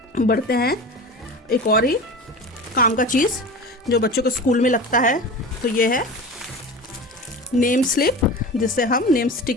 बढ़ते हैं एक और ही काम का चीज़ जो बच्चों के स्कूल में लगता है। तो ये है नेम स्लिप, जिसे हम नेम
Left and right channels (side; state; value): both; normal; correlation 0.32